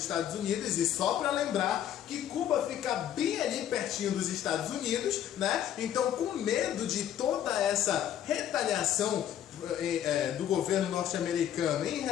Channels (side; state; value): right; quieter; 10.6 dB